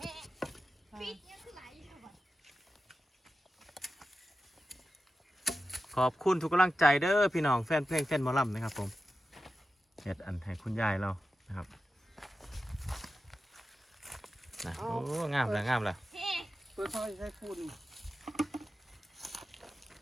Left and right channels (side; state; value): both; normal; correlation 0.92